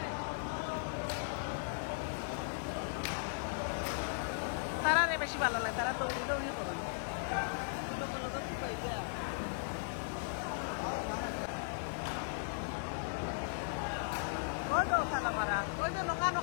তারা বেশি ভালো লাগে তারা দৌড়ি দৌড়ি করে ওই তো খানা মারা ওই যে নৌকা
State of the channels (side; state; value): right; silent; digital silence